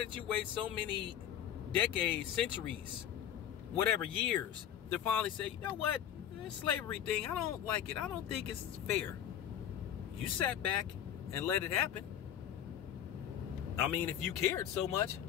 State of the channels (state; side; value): quieter; right; 10.1 dB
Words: you wait so many decades, centuries, whatever, years, to finally say, you know what, this slavery thing, I don't like it. I don't think it's fair. You sat back and let it happen. I mean, if you cared so much.